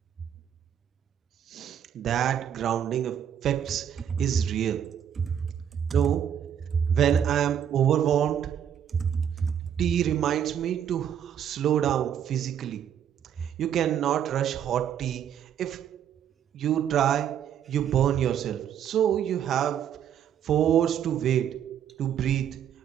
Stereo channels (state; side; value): quieter; left; 9.2 dB